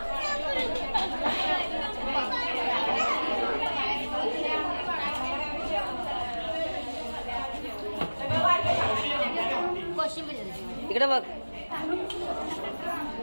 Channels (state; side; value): inverted; both; correlation -1.00